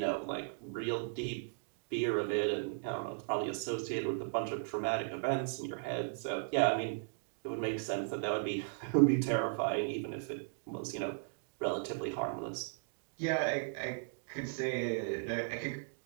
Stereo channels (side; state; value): left; silent; digital silence